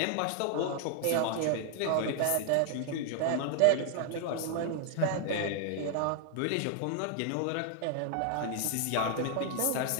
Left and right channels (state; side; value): different; both; correlation 0.00